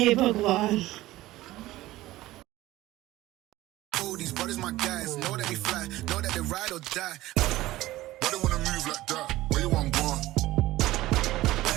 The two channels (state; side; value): quieter; left; 16.9 dB